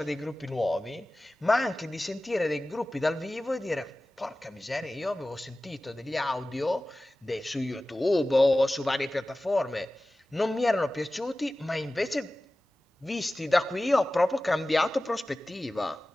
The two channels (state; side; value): normal; both; correlation 0.96